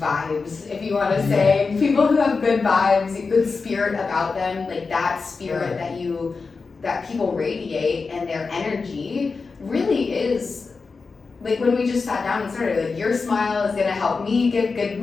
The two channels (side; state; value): right; quieter; 4.5 dB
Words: vibes, if you want to say, people who have good vibes, good spirit about them, like that spirit that people radiate, and their energy really is like when we just sat down and started, like your smile is gonna help me give